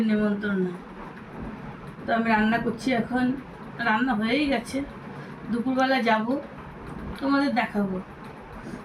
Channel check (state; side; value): identical; both; correlation 1.00